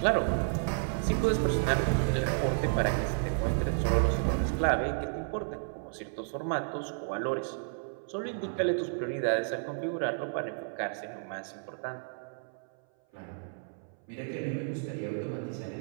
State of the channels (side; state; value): left; silent; 57 dB below the other